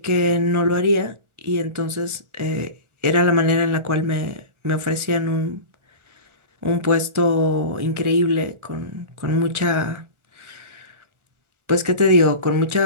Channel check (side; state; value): left; late; 1.4 ms